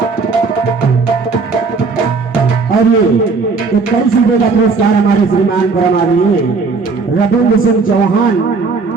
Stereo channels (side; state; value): left; quieter; 4.5 dB